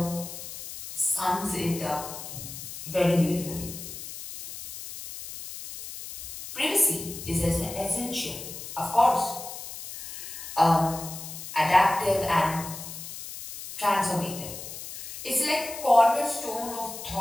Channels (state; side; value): noise; left; hiss, 10 dB below the sound